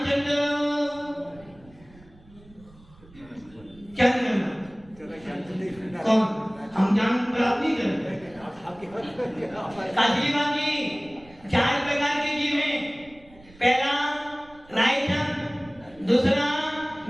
चंद्र क्या करना? कौन? हम ज्ञान प्राप्त नहीं करते। काशीबाग जी 4 प्रकार के जीव हैं। पहला रायचंद, दूसरा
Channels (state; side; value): noise; right; rumble, 24 dB below the sound